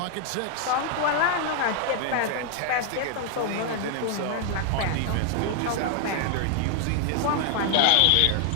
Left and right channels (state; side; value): different; both; correlation 0.00